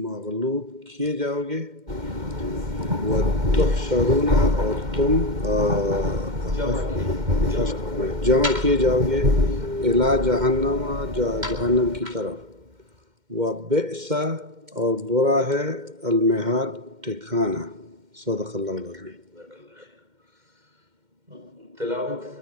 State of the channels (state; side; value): late; left; 2.1 ms